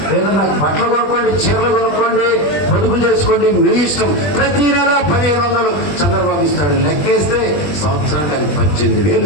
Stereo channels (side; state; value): right; late; 21 ms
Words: ఏదన్నా బట్టలు కొనుక్కోండి, చీరలు కొనుక్కోండి, పొదుపు చేసుకోండి, మీ ఇష్టం. ప్రతి నెల 1500 చంద్రబాబు ఇస్తాడు. లెక్కేస్తే సంవత్సరానికి 18,000.